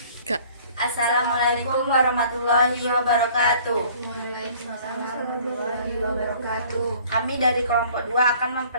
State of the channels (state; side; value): inverted; both; correlation -0.53